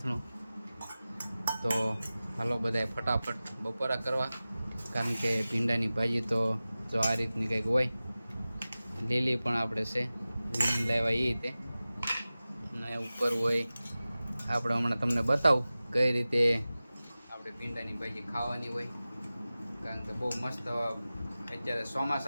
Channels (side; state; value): both; inverted; correlation -0.96